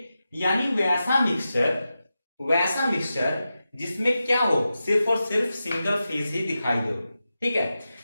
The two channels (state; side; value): inverted; both; correlation -0.91